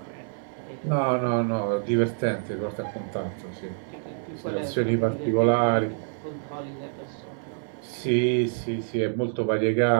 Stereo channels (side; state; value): left; silent; digital silence